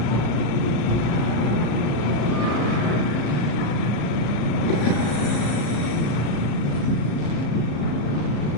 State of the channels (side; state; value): right; late; 34 ms